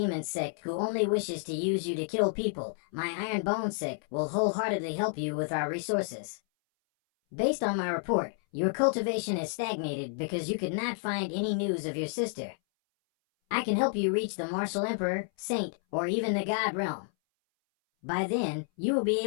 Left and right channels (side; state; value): right; silent; 58 dB below the other